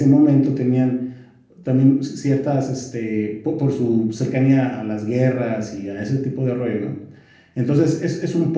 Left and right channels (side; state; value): both; identical; correlation 1.00